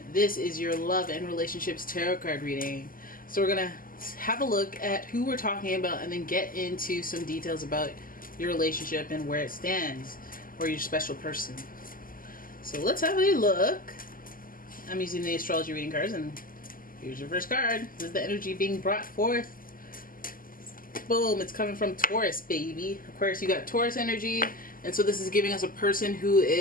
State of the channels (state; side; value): late; right; 0.41 ms